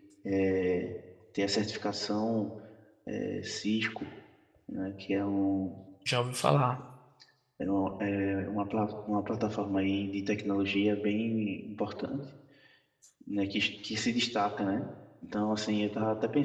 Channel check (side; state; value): both; identical; correlation 1.00